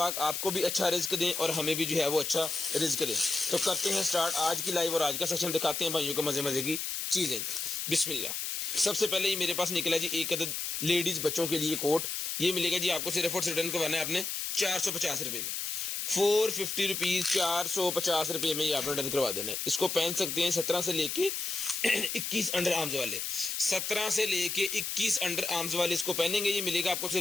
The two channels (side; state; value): left; noise; hiss, 3 dB below the sound